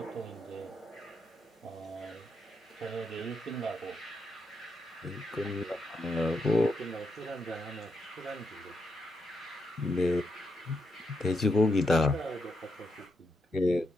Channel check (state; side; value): normal; both; correlation 0.82